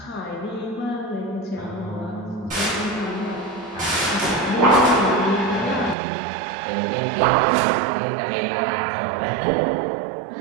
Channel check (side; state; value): left; drops out; at 6.0 s